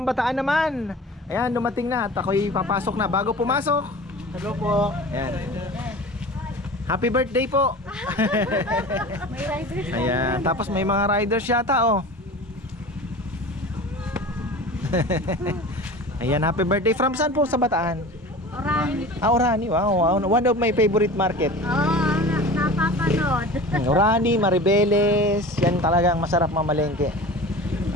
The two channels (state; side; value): normal; both; correlation 0.37